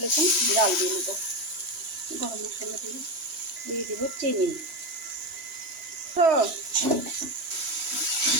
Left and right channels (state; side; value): late; left; 3.1 ms